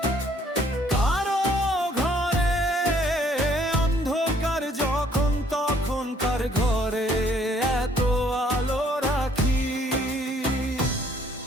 কারো ঘরে অন্ধকার যখন, তখন কার ঘরে এত আলো রাখি।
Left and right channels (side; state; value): both; normal; correlation 0.63